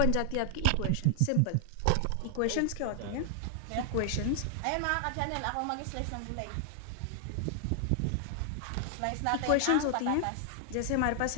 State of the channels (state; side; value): different; both; correlation 0.00